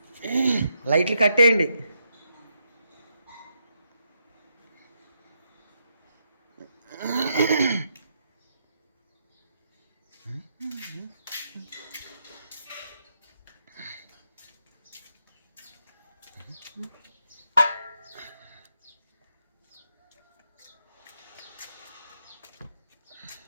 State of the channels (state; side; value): inverted; both; correlation -0.80